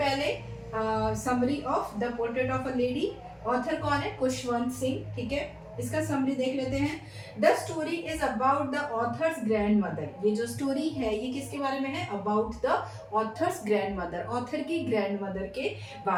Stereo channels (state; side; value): identical; both; correlation 1.00